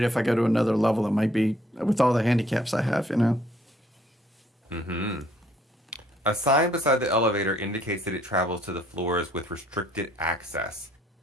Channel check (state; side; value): normal; both; correlation 0.64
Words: if I go to another level, it might be with all the handicaps I have, you know? Mm-hmm. A sign beside the elevator indicates that it travels to the floors with restricted access.